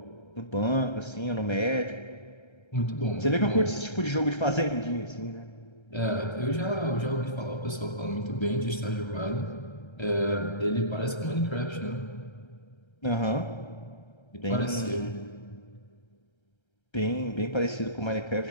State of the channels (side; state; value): right; late; 1.3 ms